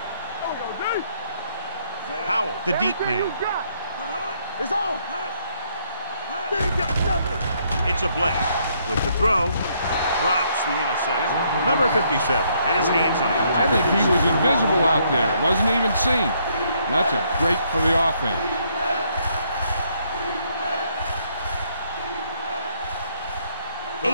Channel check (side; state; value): both; inverted; correlation -0.70